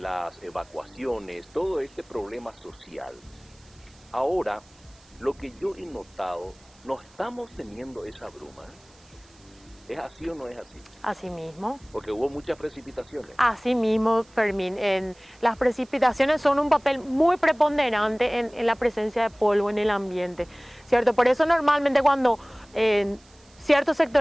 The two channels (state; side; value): noise; right; hiss, 28 dB below the sound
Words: evacuaciones, todo este problema social. Ahora, lo que yo he notado, no estamos teniendo esa bruma. ¿Es así o no es así? Así mismo. Porque hubo muchas precipitaciones. Así mismo, Fermín. Las precipitaciones son un papel muy preponderante en la presencia de polvo en el ambiente, ¿cierto? Por eso normalmente cuando ciertos